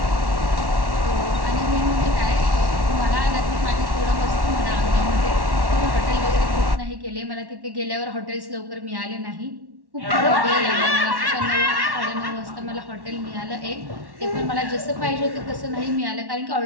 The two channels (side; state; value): left; late; 1.1 ms